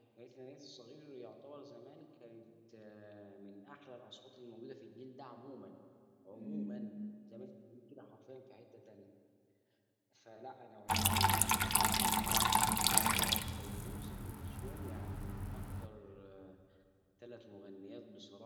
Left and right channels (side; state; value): both; identical; correlation 1.00